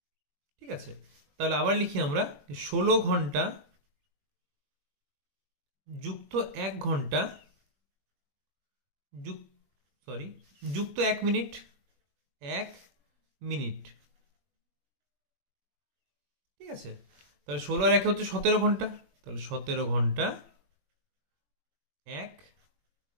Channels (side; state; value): left; late; 21 ms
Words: ঠিক আছে, তাহলে আবার লিখি আমরা, 16 ঘন্টা যুক্ত 1 ঘন্টা যুক্ত 1 মিনিট। 1 মিনিট। ঠিক আছে, তাহলে 16 আর 1 হচ্ছে 17 ঘন্টা। তাহলে 17 ঘন্টা 1